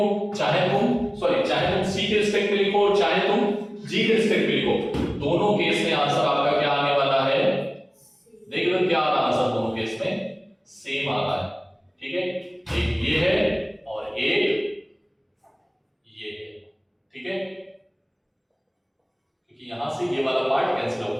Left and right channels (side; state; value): both; identical; correlation 1.00